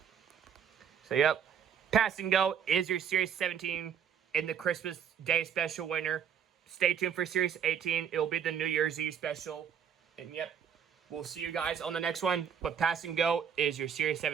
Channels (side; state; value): left; quieter; 8.1 dB